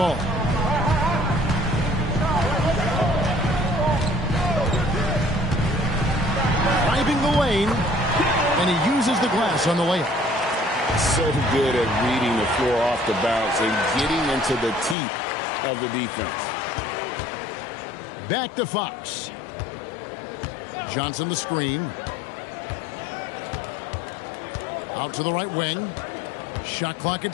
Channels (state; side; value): drops out; right; at 15.0 s